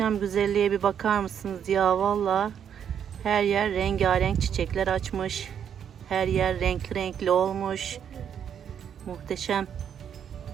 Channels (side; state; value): left; quieter; 8.5 dB